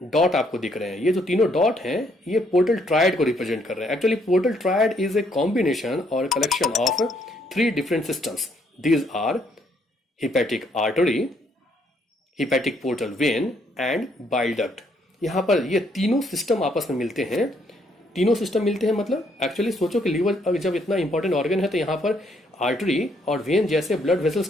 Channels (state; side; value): normal; both; correlation 0.70